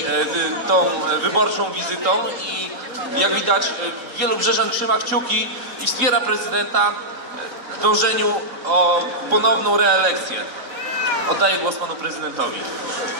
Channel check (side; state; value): left; late; 4.0 ms